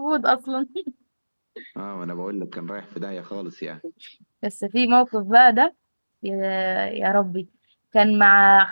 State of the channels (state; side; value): inverted; both; correlation -1.00